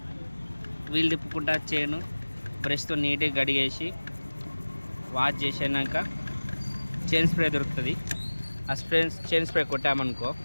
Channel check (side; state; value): both; inverted; correlation -1.00